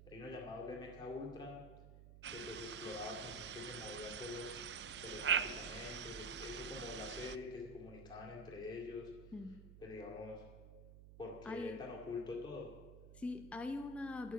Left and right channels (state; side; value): noise; right; hum, 15 dB below the sound